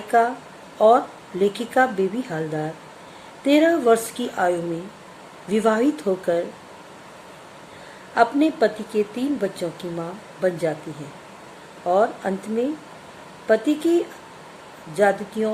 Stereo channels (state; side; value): identical; both; correlation 1.00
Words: और लेखिका बेबी हालदार 13 वर्ष की आयु में विवाहित होकर अपने पति के 3 बच्चों की मां बन जाती है और अंत में पति की